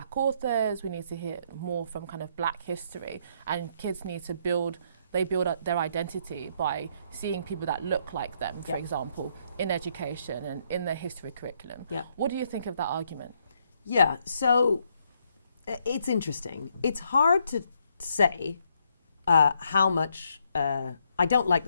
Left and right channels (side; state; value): both; inverted; correlation -0.73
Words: authors, we need to hear more from kind of black history, and kids need to build up their identity by seeing people that look like them, for example, in education and in the history curriculum. What do you think of that argument? Yeah, so it's interesting. It's hard to say how much... I don't like